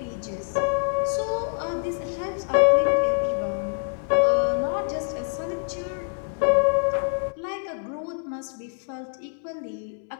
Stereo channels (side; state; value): right; silent; 61 dB below the other